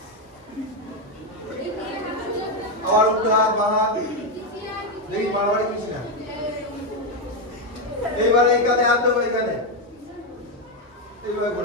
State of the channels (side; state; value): both; normal; correlation 0.06